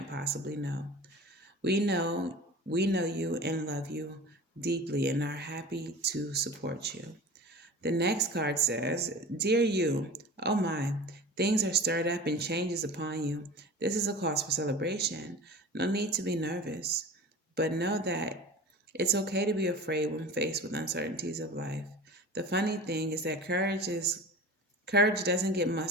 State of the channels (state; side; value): normal; both; correlation 0.36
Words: possibly know. We know we know you and love you deeply and are happy to support you. The next card says, Dear you, oh my, things are stirred up and changes upon you. This is a cause for celebration. No need to be nervous, but know that it's okay to be afraid when faced with uncertainties of life. The funny thing is that courage doesn't get